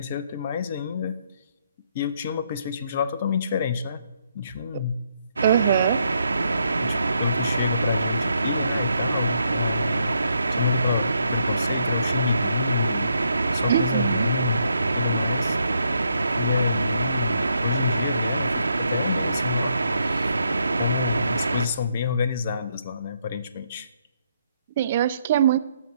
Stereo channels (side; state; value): both; inverted; correlation -0.76